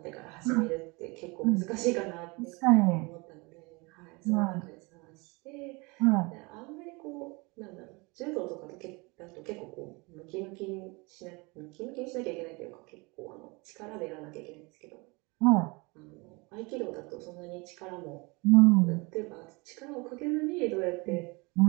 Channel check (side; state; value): left; quieter; 27.1 dB